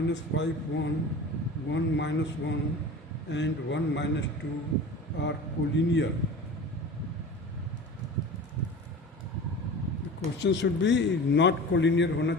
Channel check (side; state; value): both; normal; correlation 0.35